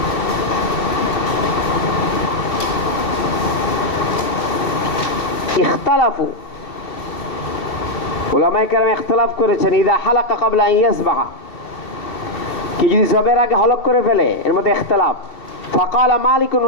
ইখতালাফু, উলামায়ে কেরাম ইখতিলাফ করেছেন ইদা হালাকা ক্বাবলা আন ইয়াযবাহা, কি যদি জবের আগে হলক করে ফেলে, এর মধ্যে ইখতিলাফ। ফাকালা মালিক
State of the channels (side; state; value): right; late; 2.7 ms